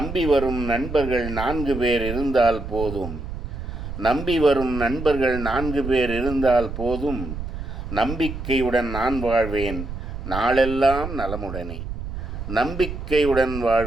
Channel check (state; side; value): noise; right; rumble, 7 dB below the sound